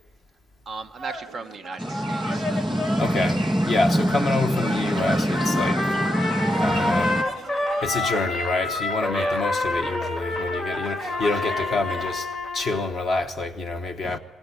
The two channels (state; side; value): normal; both; correlation 0.83